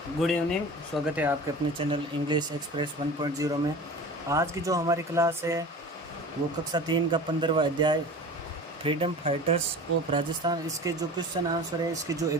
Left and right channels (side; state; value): both; normal; correlation 0.37